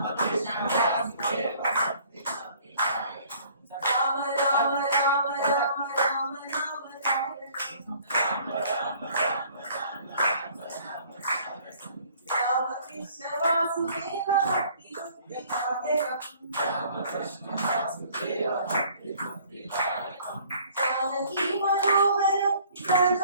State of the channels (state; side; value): inverted; both; correlation -0.56